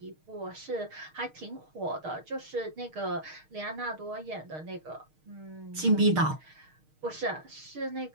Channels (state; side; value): late; left; 6.5 ms